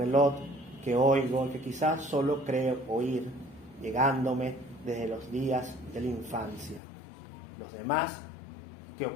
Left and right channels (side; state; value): right; drops out; at 6.8 s